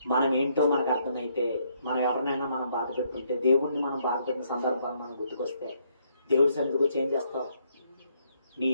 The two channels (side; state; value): both; inverted; correlation -0.72